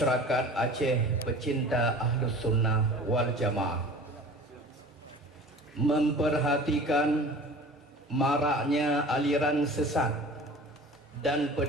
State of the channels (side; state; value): both; normal; correlation 0.41